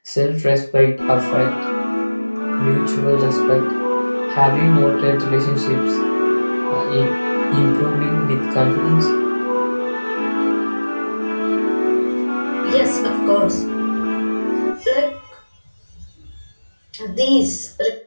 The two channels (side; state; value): both; inverted; correlation -1.00